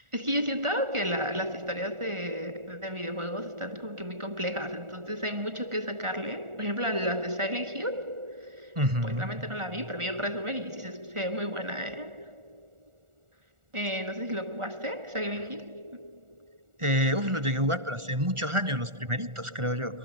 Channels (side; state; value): left; late; 1.4 ms